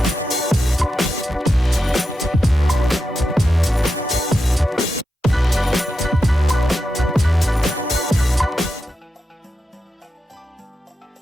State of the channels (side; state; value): both; normal; correlation 0.88